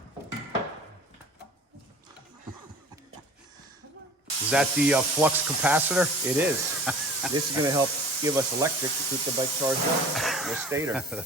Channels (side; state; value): both; normal; correlation 0.44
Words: Is that the flux capacitor? It is. This is going to help give us electric to keep the bike charged up. The stator.